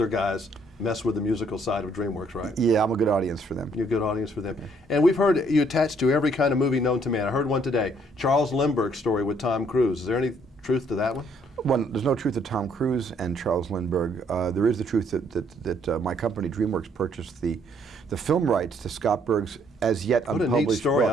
guys mess with the musical side of DreamWorks, right? Yeah, I'm a good audience for them. You're a good audience for them. Yeah. And we've heard you attached to every kind of movie known to man. I heard one today, Charles Lindbergh's story with Tom Cruise. Is there any truth to that one? Well, there's no truth to Tom Cruise and Charles Lindbergh. There is the truth that my company, DreamWorks, purchased the film rights to Scott Berg's as yet unpublished What a neat story. book.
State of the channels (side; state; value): both; normal; correlation 0.66